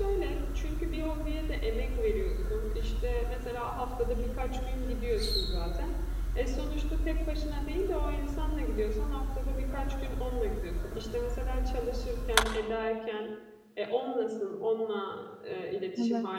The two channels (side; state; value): both; identical; correlation 1.00